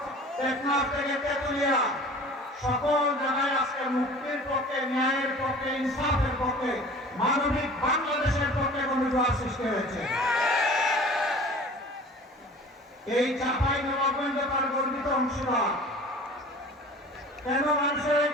টেকনাফ থেকে তেতুলিয়া, সকল জায়গায় আজকে মুক্তির পক্ষে, ন্যায়ের পক্ষে, ইনসাফের পক্ষে, মানবিক বাংলাদেশের পক্ষে গণজোয়ার সৃষ্টি হয়েছে। এই চাঁপাইনবাবগঞ্জ তার গর্বিত অংশীদার। কেন মানুষের এই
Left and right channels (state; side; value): normal; both; correlation 0.43